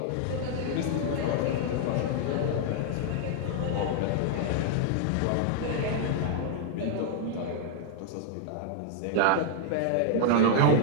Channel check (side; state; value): both; different; correlation 0.00